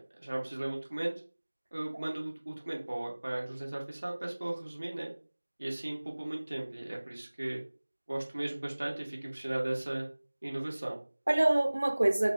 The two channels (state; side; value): inverted; both; correlation -1.00